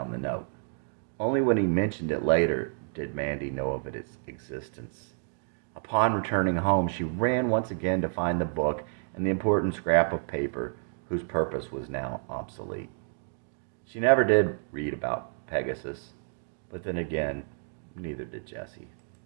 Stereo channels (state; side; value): silent; left; digital silence